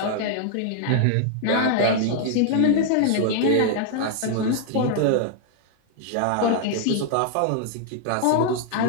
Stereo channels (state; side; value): different; both; correlation 0.00